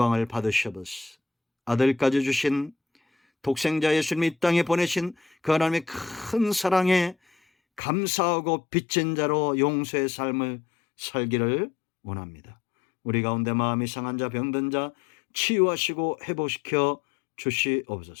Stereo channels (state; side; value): drops out; right; at 7.8 s